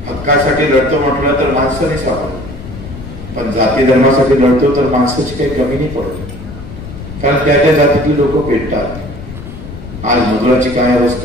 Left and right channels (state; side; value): noise; left; rumble, 12 dB below the sound